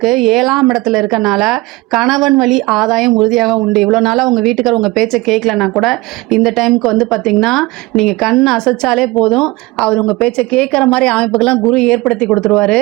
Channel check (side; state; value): left; quieter; 21.7 dB